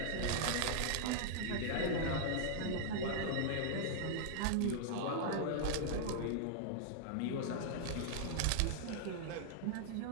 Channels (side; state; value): both; different; correlation -0.01